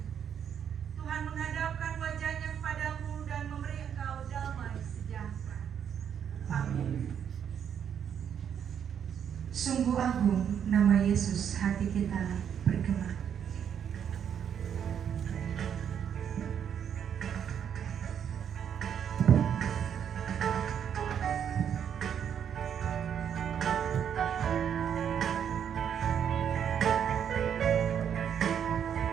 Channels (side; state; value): left; quieter; 8.5 dB